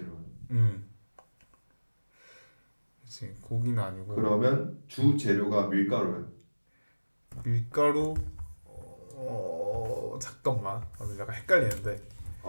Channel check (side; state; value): both; inverted; correlation -1.00